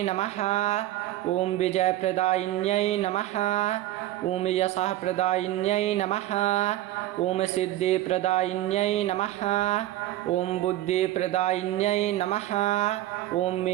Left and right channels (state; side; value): quieter; left; 14.6 dB